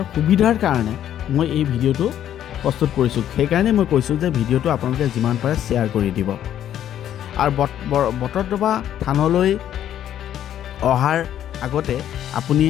সুবিধাৰ কাৰণে মই এই ভিডিঅ'টো প্ৰস্তুত কৰিছোঁ। সেইকাৰণে মই কৈছোঁ যে ভিডিঅ'টো আপোনালোকে যিমান পাৰে শ্বেয়াৰ কৰি দিব। আৰু বটদ্ৰৱা থানলৈ অহাৰ আগতে আপুনি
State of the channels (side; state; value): right; quieter; 10.8 dB